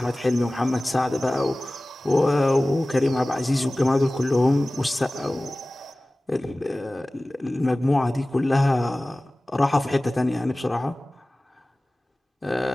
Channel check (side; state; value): both; normal; correlation 0.98